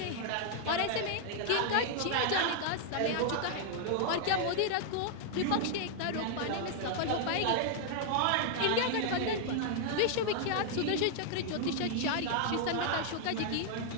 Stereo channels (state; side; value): different; both; correlation 0.00